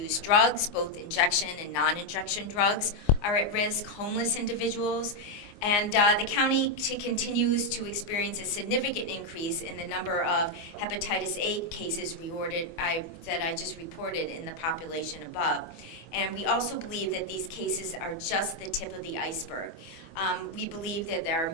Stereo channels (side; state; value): right; late; 24 ms